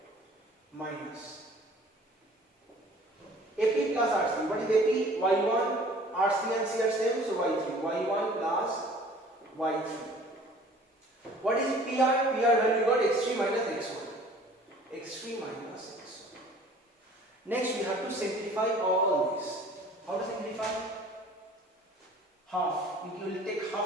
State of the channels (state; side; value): normal; both; correlation 0.50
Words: minus AP plus RC. What is AP? Y1, RC and C are same, so Y3. Y1 plus Y3. What is PR? PR value you got x3 minus x1. x3 minus x1. Next we have to simplify all this. How to simplify? Half. You will take